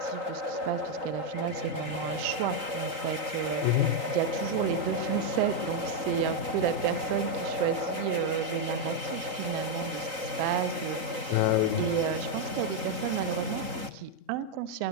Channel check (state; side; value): late; left; 3.9 ms